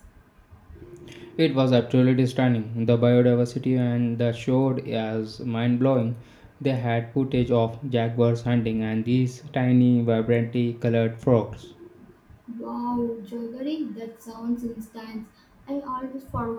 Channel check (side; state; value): both; identical; correlation 1.00